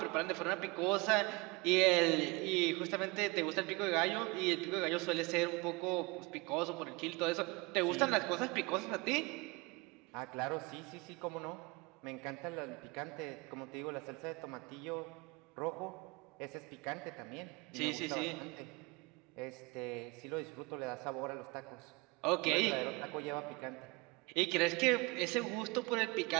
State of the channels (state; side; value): quieter; left; 25.8 dB